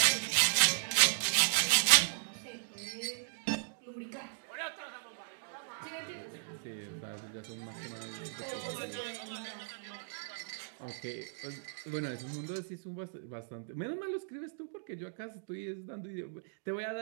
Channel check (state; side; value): silent; left; digital silence